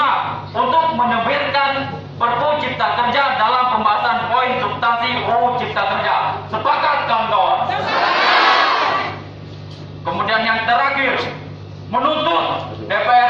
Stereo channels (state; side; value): identical; both; correlation 1.00